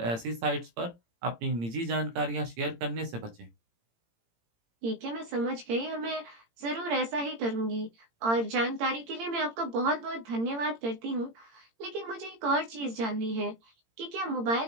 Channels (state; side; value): late; left; 18 ms